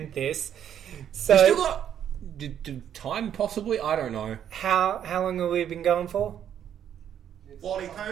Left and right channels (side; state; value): left; quieter; 9.6 dB